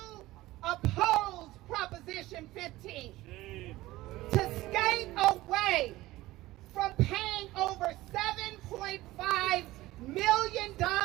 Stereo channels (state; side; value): quieter; left; 17.6 dB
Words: oppose Proposition 15, to skate away from paying over $7.5 million